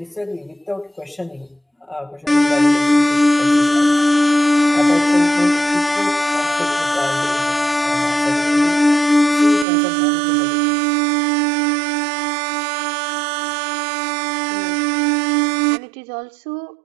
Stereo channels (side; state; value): left; drops out; at 9.7 s